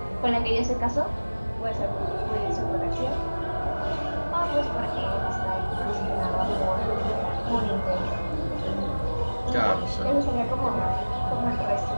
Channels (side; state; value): both; inverted; correlation -1.00